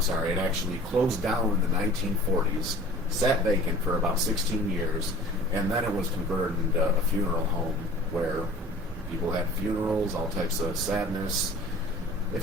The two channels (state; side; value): normal; both; correlation 0.44